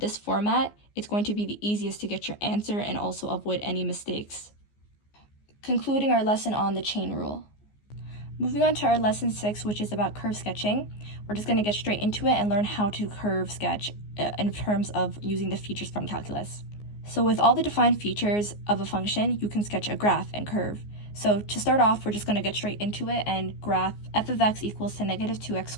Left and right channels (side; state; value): right; late; 14 ms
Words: format, it's going to be the easiest to get your answer and also avoid any mistakes. Concluding our lesson on the chain rule. Moving on to our lesson 6, which is about curve sketching. We're just going to get straight into it and learn how to curve sketch in terms of using the features from calculus. So with all the defined features of a function, you can sketch a graph and curve. So to start off, we're just going to get straight into it and graph f of x equals to negative 2x